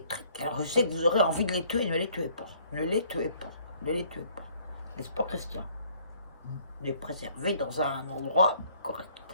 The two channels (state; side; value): inverted; both; correlation -0.60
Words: alors je sais que vous aurez envie de les tuer, ne les tuez pas. N'est-ce pas, Christian? Les préserver dans un endroit correct.